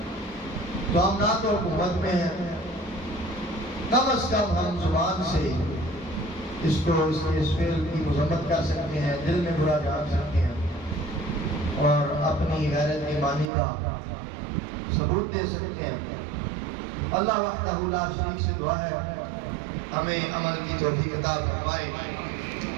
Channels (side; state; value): left; drops out; at 13.5 s